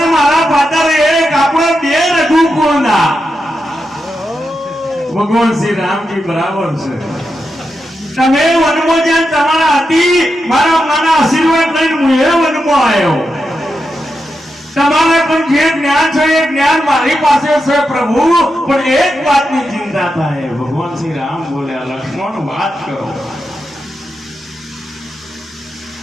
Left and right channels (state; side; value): normal; both; correlation 0.87